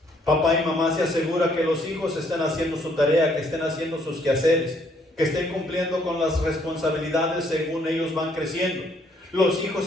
Papá y mamá se asegura que los hijos estén haciendo su tarea, que estén haciendo sus quehaceres, que estén cumpliendo con las responsabilidades según ellos van creciendo. Los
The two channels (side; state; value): both; normal; correlation 0.67